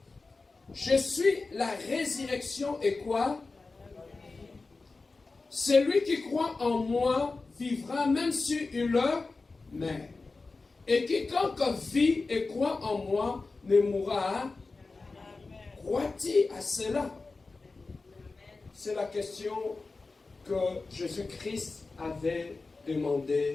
« Je suis la résurrection et quoi? Celui qui croit en moi vivra même si il meurt. Et quiconque vit et croit en moi ne mourra. Crois-tu à cela? » C'est la question que Jésus-Christ avait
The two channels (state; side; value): quieter; right; 3.8 dB